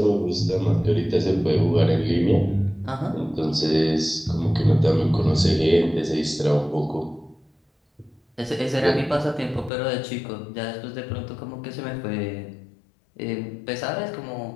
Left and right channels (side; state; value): right; drops out; at 9.7 s